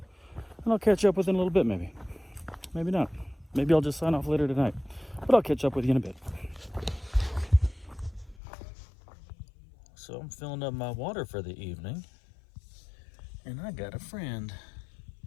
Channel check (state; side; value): drops out; right; at 8.3 s